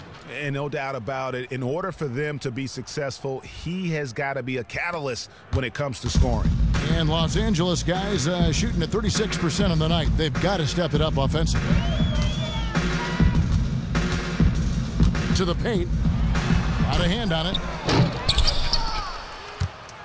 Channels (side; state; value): both; identical; correlation 1.00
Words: And no doubt about it, in order for them to be successful, he has got to be a catalyst when it comes to scoring. And Los Angeles guys shooting at 36% on the night. They've got to step it up offensively. To the paint. Got a hand on it.